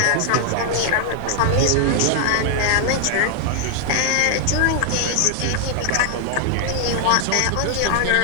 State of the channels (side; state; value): both; different; correlation 0.00